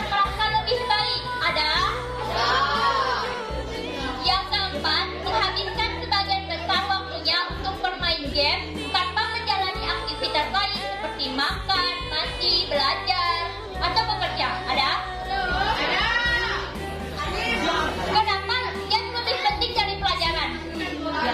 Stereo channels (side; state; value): both; identical; correlation 1.00